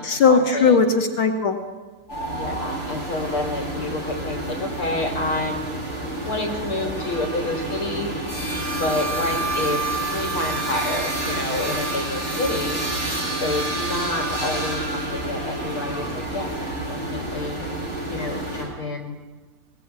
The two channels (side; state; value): right; late; 6.8 ms